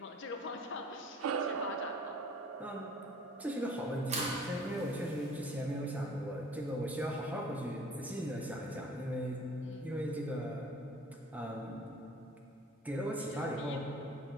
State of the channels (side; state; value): both; normal; correlation 0.49